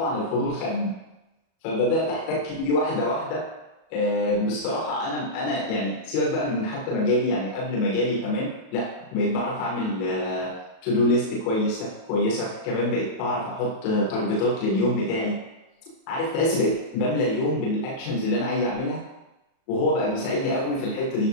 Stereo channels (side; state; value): right; late; 37 ms